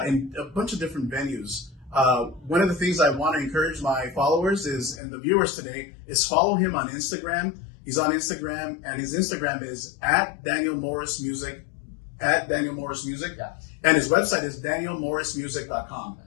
a bunch of different venues. One of the things I want to encourage my followers is, and the viewers today, is follow him on Instagram. He's on Instagram, and his Instagram is @DanielMorrisMusic, @DanielMorrisMusic, and his website is DanielMorrisMusic.com.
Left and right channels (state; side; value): drops out; right; at 5.0 s